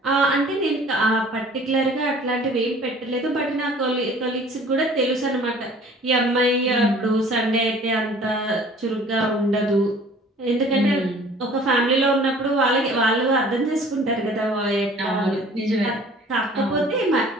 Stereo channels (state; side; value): normal; both; correlation 0.50